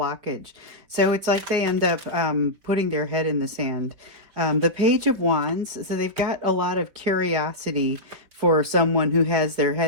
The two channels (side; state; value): left; late; 5.3 ms